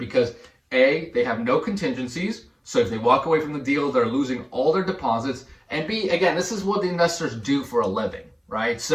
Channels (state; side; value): identical; both; correlation 1.00